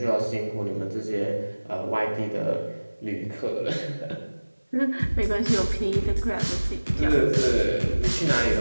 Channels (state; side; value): inverted; both; correlation -1.00